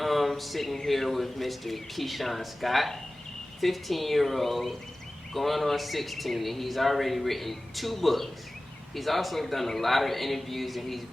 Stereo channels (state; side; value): normal; both; correlation 0.97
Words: sitting here with Mr. Keishan Scott, 15-year-old, going on 16, and he's already written 2 books. He's also done a lot of interviews, and he's